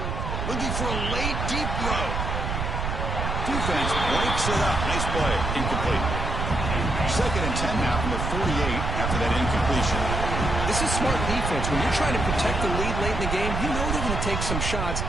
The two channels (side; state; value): right; noise; rumble, 2 dB below the sound